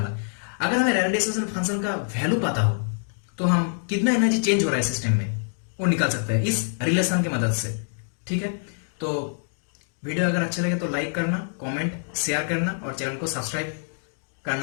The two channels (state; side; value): silent; right; digital silence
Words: अगर हमें रेले डिस्ट्रीब्यूशन फंक्शन का वैल्यू पता हो तो हम कितना एनर्जी चेंज हो रहा है सिस्टम में वो निकाल सकते हैं इस रिलेशन की मदद से, ठीक है। तो वीडियो अगर अच्छा लगे तो लाइक करना, कमेंट शेयर करना और चैनल को सब्सक्राइब